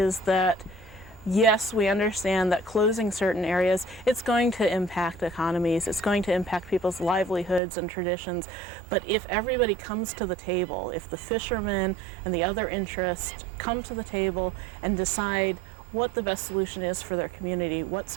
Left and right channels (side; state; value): left; drops out; at 7.6 s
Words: that yes, we understand that closing certain areas, it's going to impact economies, it's going to impact people's livelihoods and traditions, but if everybody comes to the table, if the fishermen and the other interests come to the table and decide what the best solution is for their community, what's